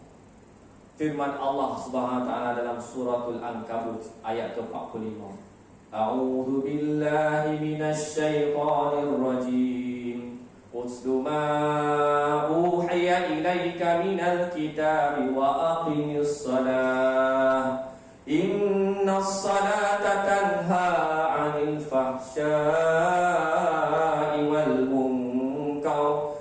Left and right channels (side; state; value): both; identical; correlation 1.00